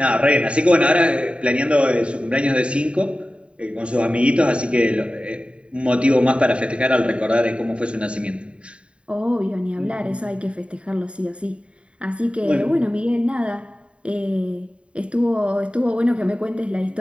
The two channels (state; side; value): late; left; 0.059 ms